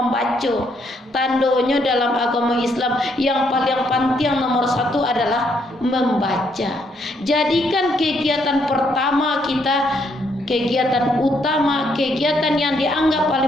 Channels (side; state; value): both; normal; correlation 0.72